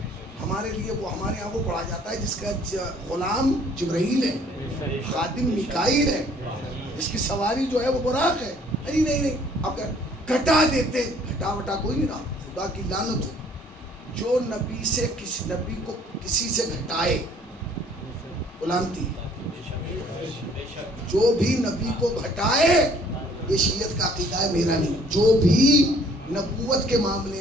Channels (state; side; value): normal; both; correlation 0.58